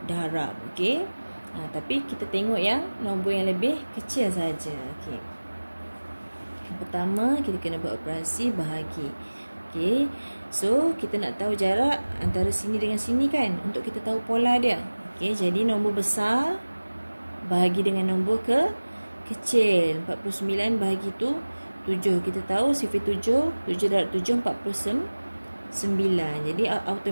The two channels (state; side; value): inverted; both; correlation -1.00